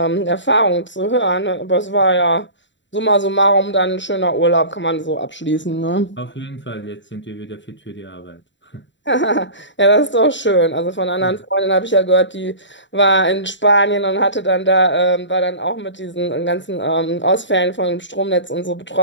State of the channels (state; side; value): late; right; 0.54 ms